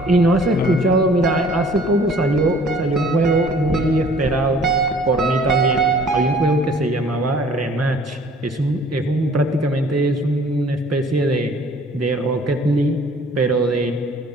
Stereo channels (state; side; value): normal; both; correlation 0.54